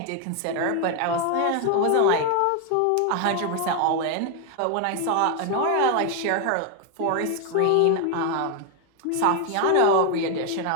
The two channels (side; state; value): both; different; correlation 0.01